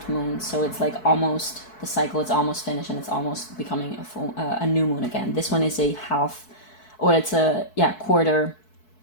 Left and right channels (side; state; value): right; late; 4.6 ms